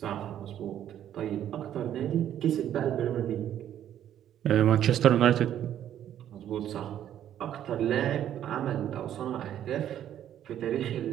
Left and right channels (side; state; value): left; quieter; 10.8 dB